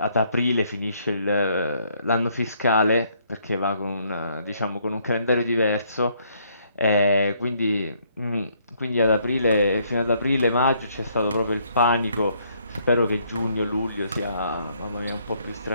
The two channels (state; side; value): inverted; both; correlation -0.69